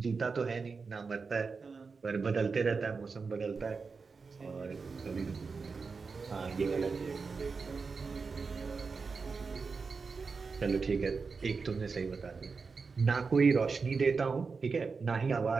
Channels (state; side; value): quieter; left; 4.8 dB